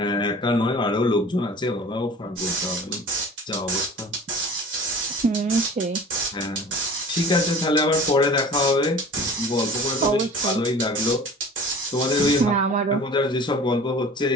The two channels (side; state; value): both; normal; correlation 0.42